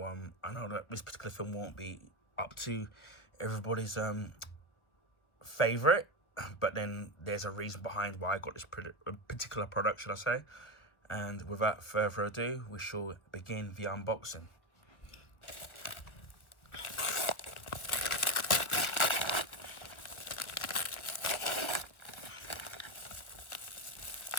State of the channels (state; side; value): late; right; 1.2 ms